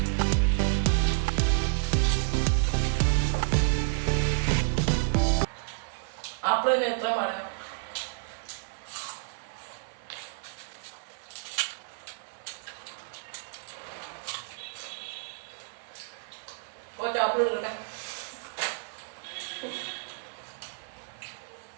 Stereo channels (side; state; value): left; silent; 58 dB below the other